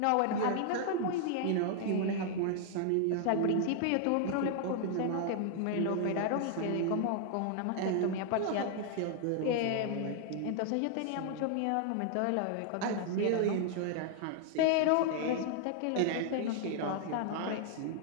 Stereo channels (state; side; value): different; both; correlation -0.01